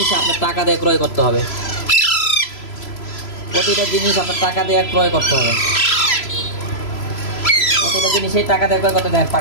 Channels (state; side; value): late; right; 3.0 ms